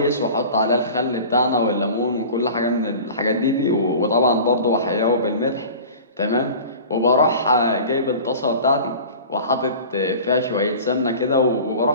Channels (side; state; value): both; inverted; correlation -0.38